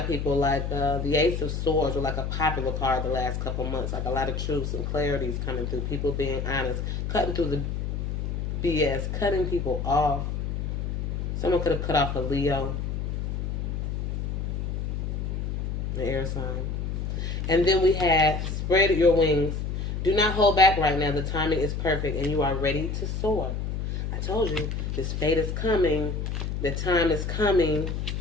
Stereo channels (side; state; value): left; noise; hum, 2 dB below the sound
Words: people, like the Ace of Swords was like a popular card the last couple months. Like a lot of truths and clarities coming through. People being honest. Cutting through the BS. Cutting people off. Someone could have cut off a Leo. The air sign. And then we have spread your wings. Do not hold back right now. The timing is perfect and you are ready to soar. I told you, this fate is coming. The time is coming.